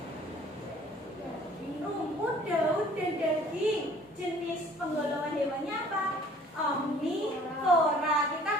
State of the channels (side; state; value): both; normal; correlation 0.53